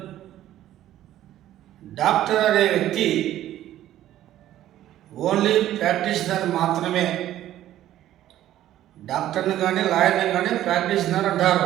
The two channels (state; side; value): quieter; left; 13.0 dB